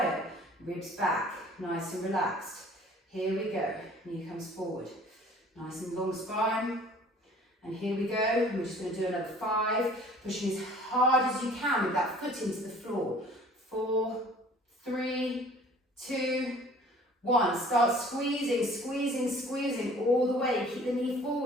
ribs back, nice and relaxed. Here we go, knee comes forward, nice and long spine. And here we go, and we're just going to do another 5, pushing as hard as you can with that foot into the floor. 4, 3, 2, 1. Start squeezing, squeezing, squeezing all the way. Keep the knee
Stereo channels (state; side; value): normal; both; correlation 0.51